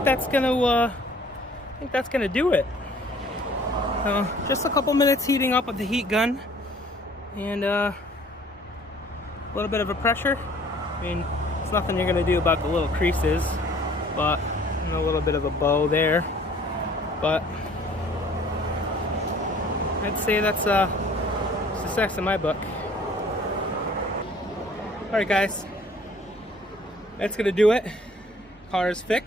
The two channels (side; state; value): both; normal; correlation 0.55